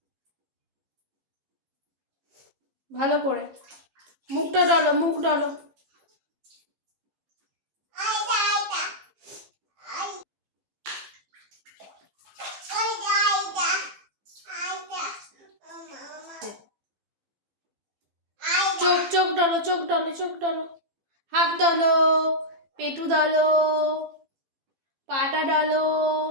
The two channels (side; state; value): left; late; 15 ms